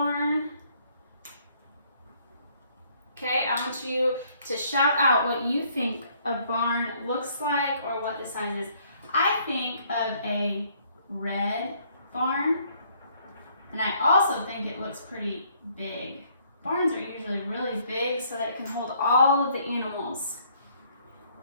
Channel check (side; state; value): both; inverted; correlation -0.65